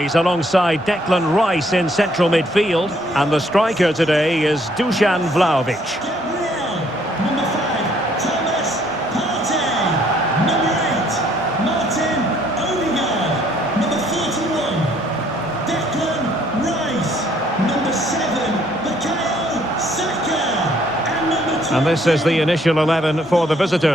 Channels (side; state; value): both; normal; correlation 0.65